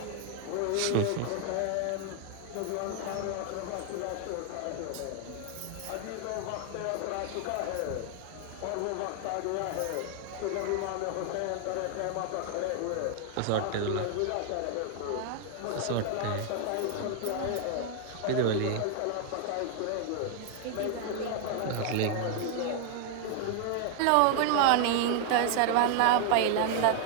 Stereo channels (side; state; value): both; different; correlation 0.00